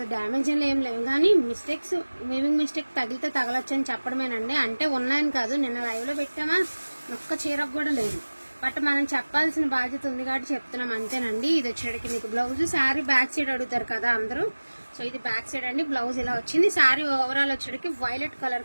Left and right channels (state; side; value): inverted; both; correlation -1.00